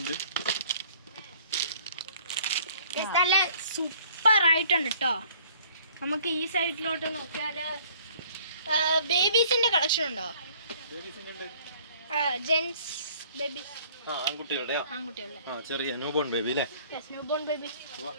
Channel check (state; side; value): inverted; both; correlation -0.56